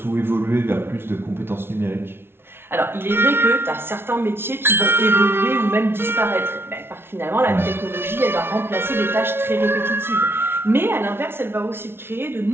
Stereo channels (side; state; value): left; late; 0.11 ms